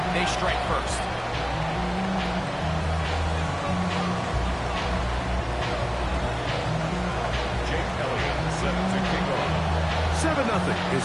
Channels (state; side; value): identical; both; correlation 1.00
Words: they strike first. 7-0 is